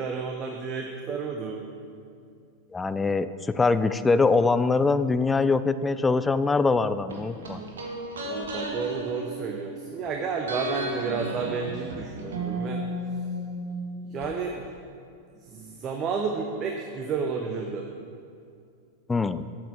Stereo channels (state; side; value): normal; both; correlation 0.65